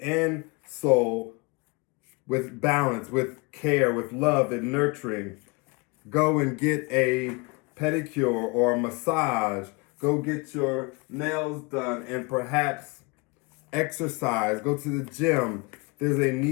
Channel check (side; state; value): right; quieter; 28.6 dB